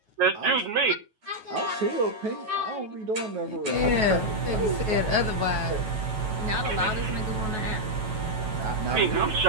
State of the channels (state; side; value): late; left; 9.3 ms